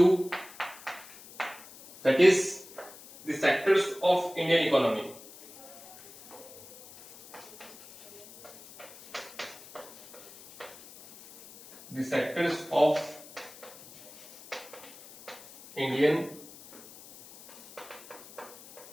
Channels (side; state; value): left; noise; hiss, 19 dB below the sound